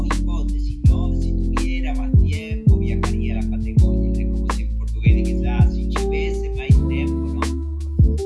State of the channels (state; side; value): identical; both; correlation 1.00